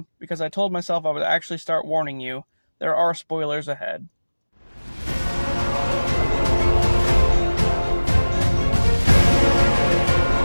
because I told myself I would actually start warning you, there are spoilers ahead.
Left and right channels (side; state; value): both; inverted; correlation -1.00